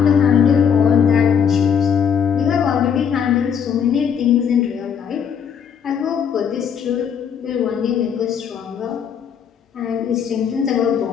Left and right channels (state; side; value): quieter; right; 7.5 dB